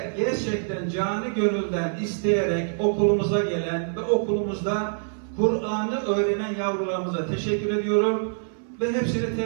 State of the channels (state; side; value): silent; left; 58 dB below the other